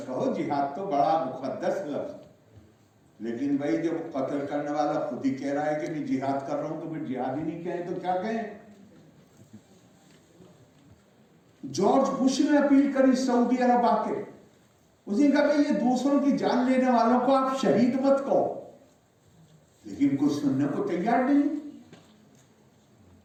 कहो, जिहाद तो बड़ा मुकद्दस लफ्ज। लेकिन भाई जब कत्ल करने वाला खुद ही कह रहा है कि मैं जिहाद कर रहा हूं, तो फिर जिहादी नहीं कहें तो क्या कहें। जॉर्ज बुश ने अपील करी सऊदी अरब आके, उसने कहा भाई ये दूसरों की जान लेने वालों को आप शहीद मत कहो, लेकिन कुछ सुनने को तैयार नहीं।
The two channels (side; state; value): both; identical; correlation 1.00